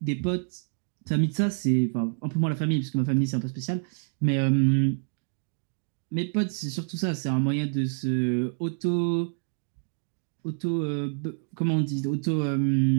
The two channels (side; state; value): left; silent; 60 dB below the other